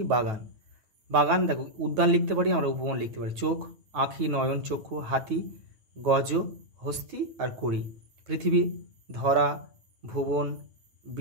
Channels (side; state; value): left; late; 9.2 ms